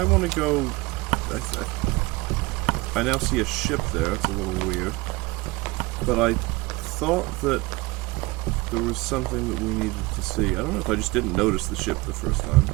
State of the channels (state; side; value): quieter; left; 23.1 dB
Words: want to go... I now see a ship there, it's a little weird. But I thought that there was something that we needed to see. I don't know if I just didn't notice the ship the first time,